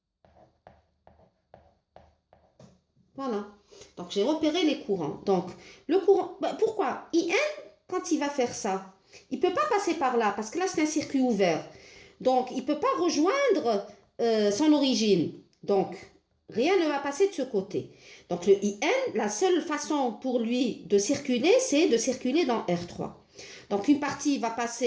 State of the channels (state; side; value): identical; both; correlation 1.00